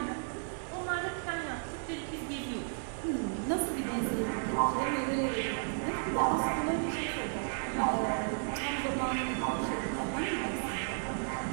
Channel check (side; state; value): left; silent; digital silence